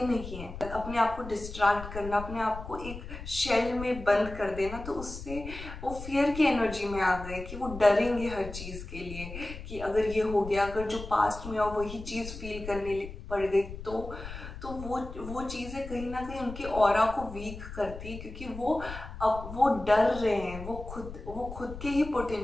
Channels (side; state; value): left; noise; rumble, 11 dB below the sound